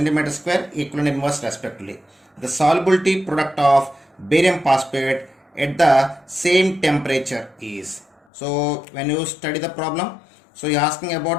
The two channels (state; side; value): drops out; right; at 8.2 s